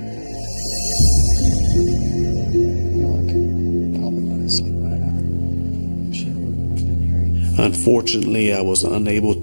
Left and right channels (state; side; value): inverted; both; correlation -1.00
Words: Unfortunately, I was unable